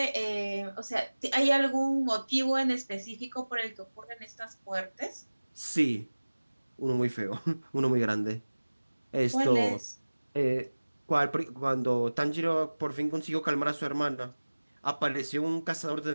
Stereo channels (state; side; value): inverted; both; correlation -1.00